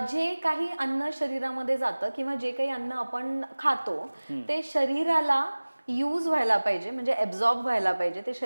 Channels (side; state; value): both; inverted; correlation -1.00